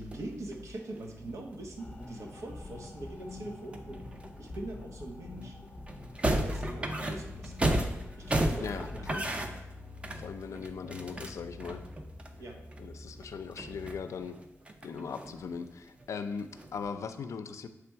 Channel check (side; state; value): both; normal; correlation 0.80